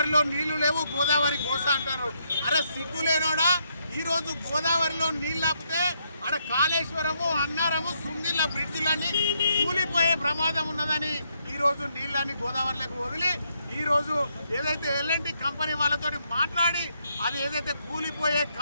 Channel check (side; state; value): both; inverted; correlation -0.76